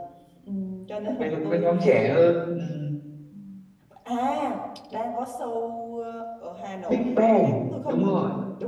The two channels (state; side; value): identical; both; correlation 1.00